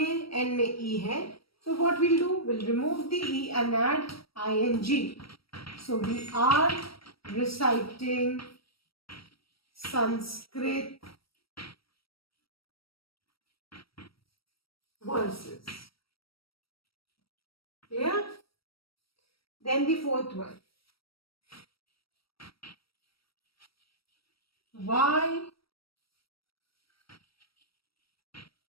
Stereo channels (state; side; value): late; right; 0.75 ms